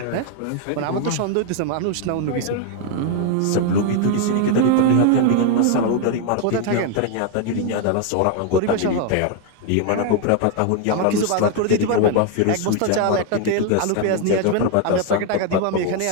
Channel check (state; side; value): different; both; correlation 0.00